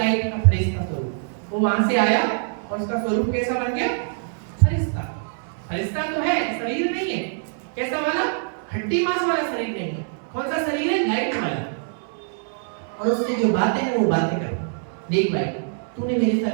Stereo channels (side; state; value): left; silent; digital silence